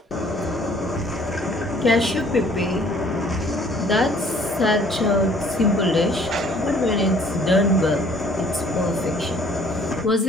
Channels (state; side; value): normal; both; correlation 0.58